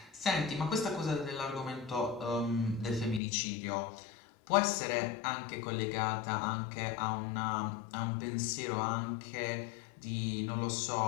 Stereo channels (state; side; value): drops out; right; at 3.2 s